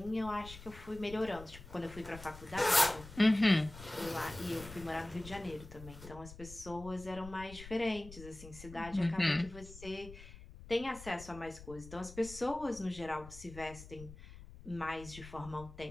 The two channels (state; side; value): noise; left; rumble, 15 dB below the sound